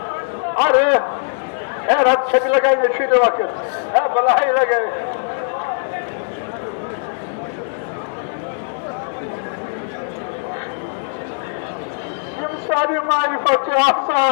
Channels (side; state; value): right; silent; digital silence